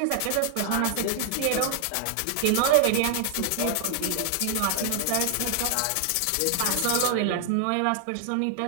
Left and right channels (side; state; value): both; different; correlation 0.00